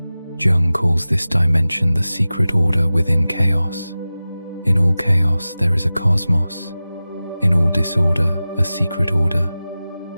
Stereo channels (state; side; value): inverted; both; correlation -0.96